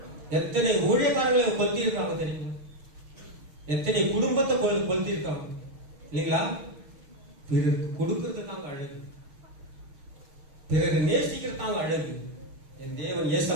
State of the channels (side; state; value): left; late; 6.5 ms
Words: எத்தனை ஊழியக்காரர்களை கொளுத்தி இருக்காங்க தெரியுமா? எத்தனை குடும்பத்தை கொளுத்தி இருக்காங்க இல்லைங்களா? பிறருக்கு கொடுக்கிறது தாங்க அழகு, பிறகு நேசிக்கிறது தாங்க அழகு. என் தேவன்